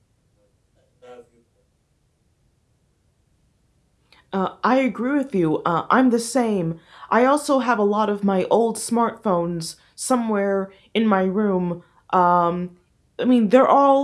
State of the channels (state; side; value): identical; both; correlation 1.00